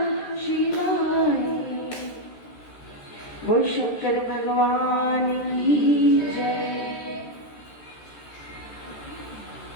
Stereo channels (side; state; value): right; late; 13 ms